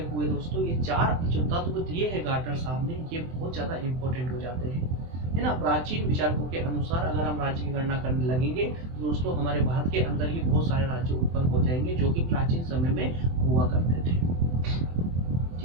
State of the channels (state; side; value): late; left; 23 ms